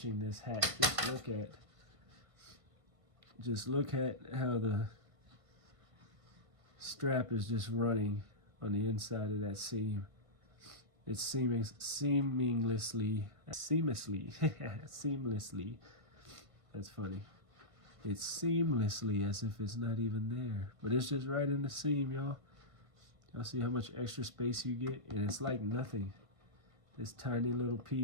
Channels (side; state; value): left; late; 1.5 ms